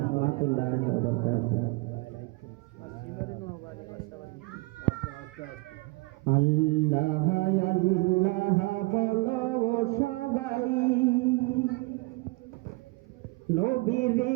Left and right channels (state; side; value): quieter; left; 25.3 dB